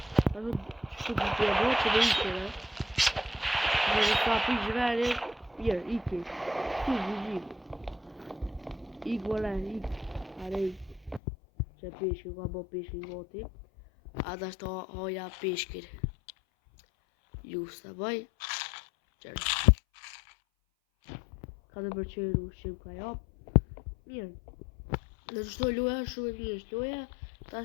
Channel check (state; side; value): drops out; right; at 11.2 s